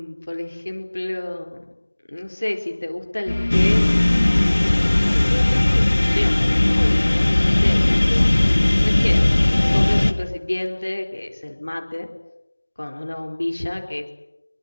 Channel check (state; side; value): inverted; both; correlation -1.00